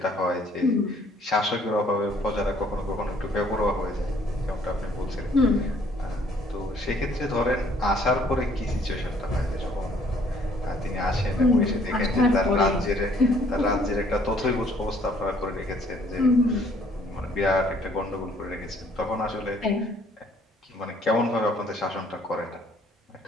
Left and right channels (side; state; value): both; normal; correlation 0.61